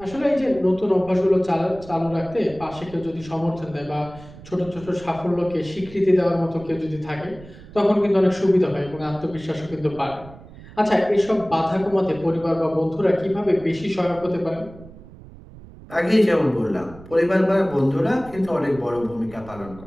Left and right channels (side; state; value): right; noise; rumble, 19 dB below the sound